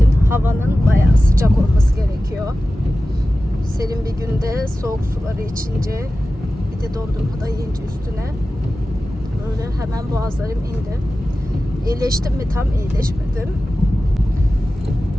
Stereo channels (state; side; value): normal; both; correlation 0.95